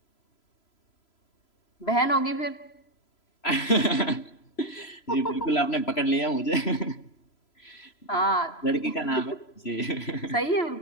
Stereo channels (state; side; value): late; right; 3.0 ms